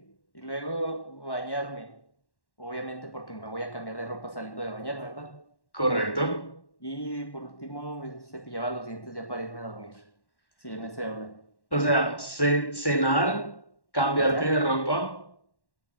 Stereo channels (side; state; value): right; late; 1.1 ms